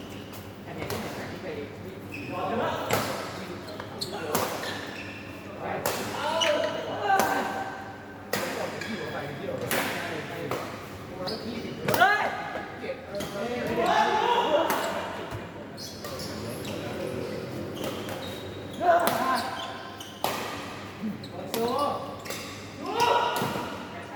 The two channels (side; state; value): both; identical; correlation 1.00